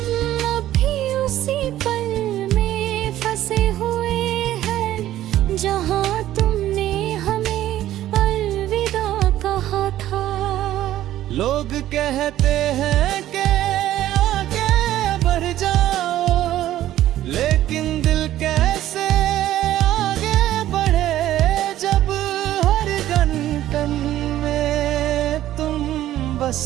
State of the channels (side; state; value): left; quieter; 13.3 dB